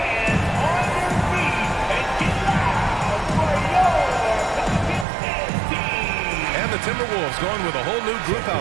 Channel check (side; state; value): left; drops out; at 5.1 s